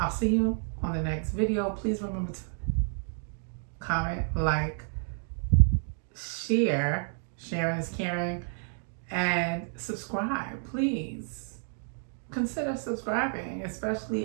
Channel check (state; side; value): silent; left; 58 dB below the other